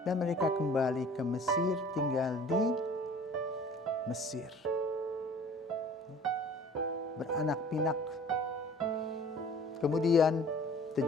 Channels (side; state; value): both; normal; correlation 0.49